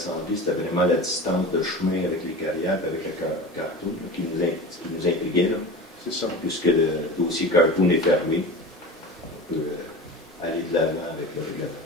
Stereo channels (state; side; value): normal; both; correlation 0.33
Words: c'était vraiment la distance de chemin avec les carrières, avec le cartoon, qui nous intriguait. C'est ça. Puisque le dossier cartoon est fermé, on peut aller de l'avant avec le règlement.